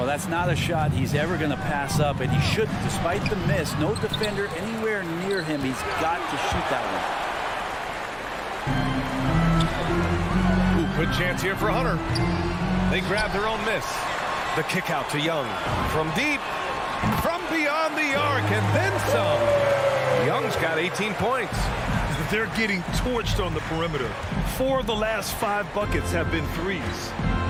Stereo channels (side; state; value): both; identical; correlation 1.00